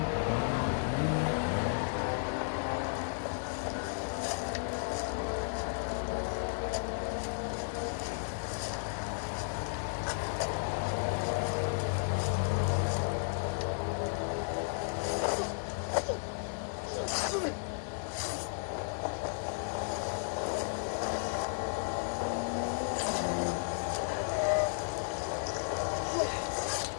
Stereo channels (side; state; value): right; silent; 55 dB below the other